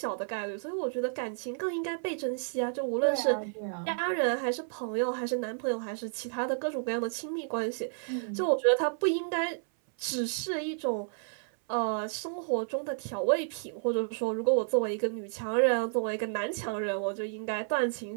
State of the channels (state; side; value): silent; left; 57 dB below the other